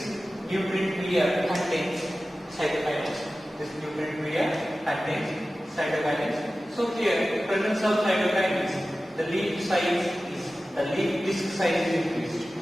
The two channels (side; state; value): both; normal; correlation 0.95